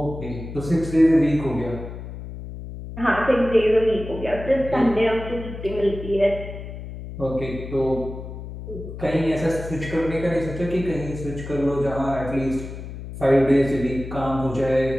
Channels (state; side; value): noise; left; hum, 10 dB below the sound